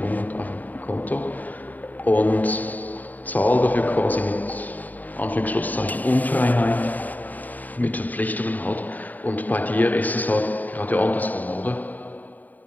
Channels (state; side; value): late; right; 0.082 ms